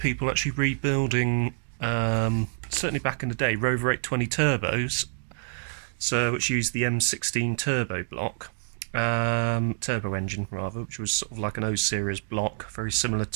actually rebuilding, certainly back in the day, Rover 820 turbos, which used the M16 turbo block, turbo engine rather, which was sort of like an O series block, very similar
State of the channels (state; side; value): silent; left; digital silence